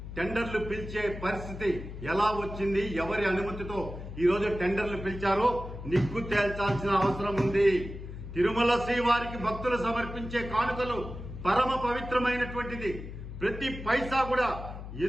టెండర్లు పిలిచే పరిస్థితి ఎలా వచ్చింది? ఎవరి అనుమతితో ఈరోజు టెండర్లు పిలిచారో నిగ్గు తేల్చాల్సిన అవసరం ఉంది. తిరుమల శ్రీవారికి భక్తులు సమర్పించే కానుకలు పరమ పవిత్రమైనటువంటిది. ప్రతి పైసా కూడా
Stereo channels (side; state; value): left; noise; hum, 10 dB below the sound